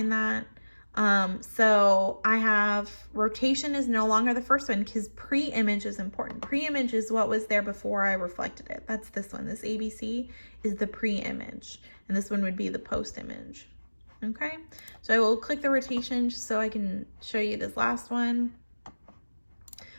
that. So I have rotation is no longer the first one because pre-image is important. Pre-image is what was there before I reflected it. That's this one. This ABC is the pre-image, and this one would be the post-image. Okay, so I will click the rotation just so I can show you this last one.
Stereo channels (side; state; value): both; inverted; correlation -1.00